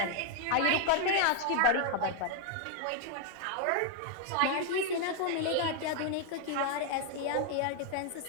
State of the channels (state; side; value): different; both; correlation 0.00